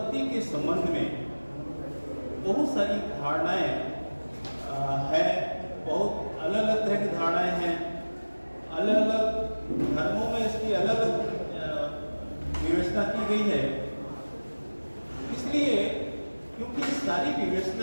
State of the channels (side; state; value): both; inverted; correlation -1.00